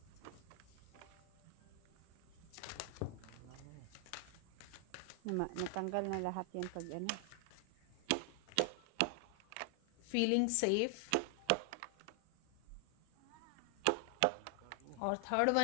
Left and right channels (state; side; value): different; both; correlation 0.00